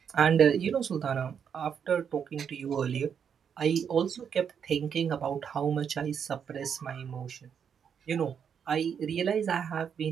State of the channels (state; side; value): quieter; left; 7.5 dB